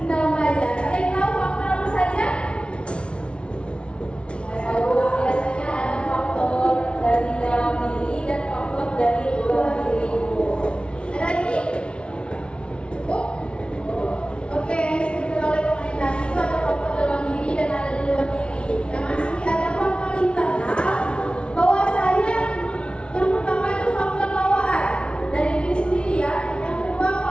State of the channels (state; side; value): late; right; 0.058 ms